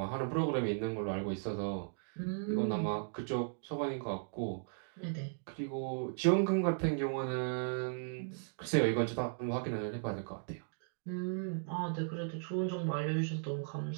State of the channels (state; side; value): silent; left; digital silence